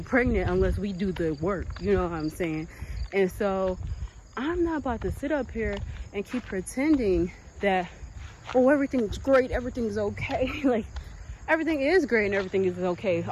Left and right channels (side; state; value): both; identical; correlation 1.00